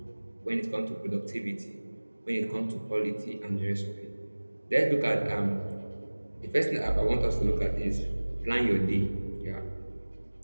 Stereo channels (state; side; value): inverted; both; correlation -1.00